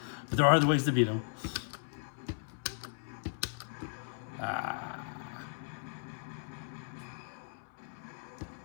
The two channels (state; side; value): silent; right; 54 dB below the other